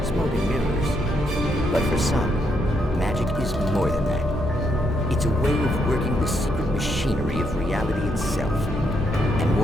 smoking mirrors. But for some, magic is more than that. It's a way of working the secret machinery of reality itself. And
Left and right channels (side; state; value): both; normal; correlation 0.77